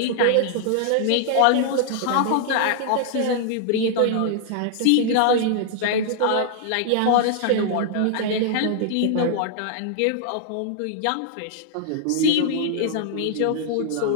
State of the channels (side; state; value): both; different; correlation 0.00